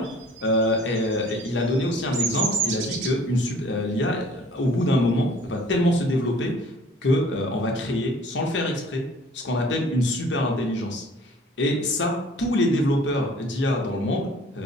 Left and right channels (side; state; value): both; normal; correlation 0.52